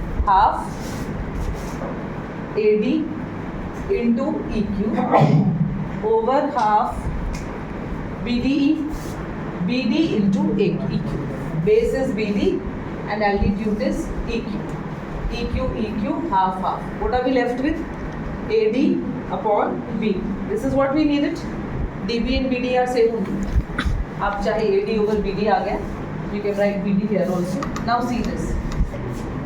half AD into EQ over half BDE, BD into EQ. Base is BD and altitude is EQ. EQ, half. What are we left with? AD upon B. This is what we needed. DB and BD are same only. आप चाहे AD over BD आ गया, you can write BD here also. Now see this.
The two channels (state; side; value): identical; both; correlation 1.00